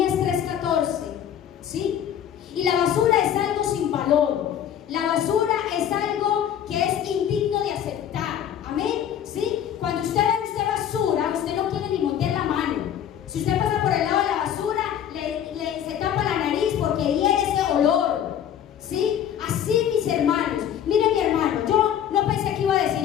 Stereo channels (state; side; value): quieter; right; 9.7 dB